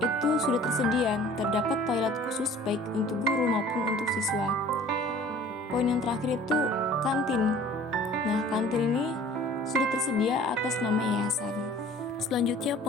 itu sudah tersedia. Terdapat toilet khusus baik untuk guru maupun untuk siswa. Poin yang terakhir itu kantin. Nah, kantin ini sudah tersedia atas nama yayasan. Selanjutnya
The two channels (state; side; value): normal; both; correlation 0.48